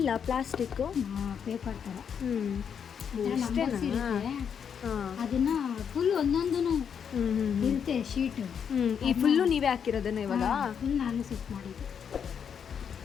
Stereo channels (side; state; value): right; quieter; 7.5 dB